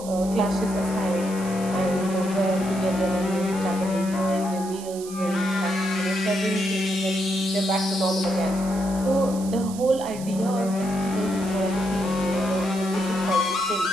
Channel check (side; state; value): right; noise; hiss, 15 dB below the sound